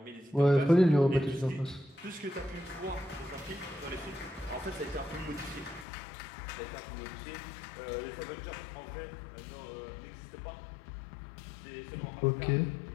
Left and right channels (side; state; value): right; drops out; at 5.9 s